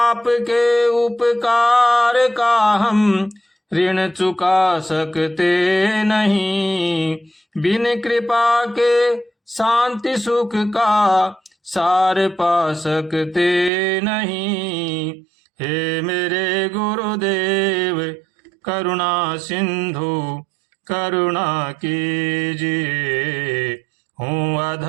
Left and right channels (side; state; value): left; drops out; at 13.7 s